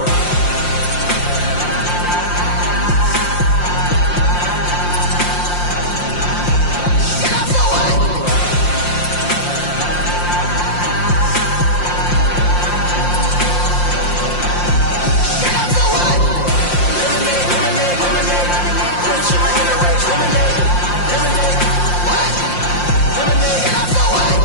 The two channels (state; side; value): late; right; 5.7 ms